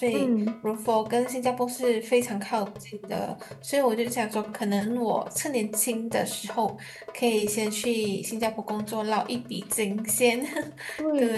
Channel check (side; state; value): both; identical; correlation 1.00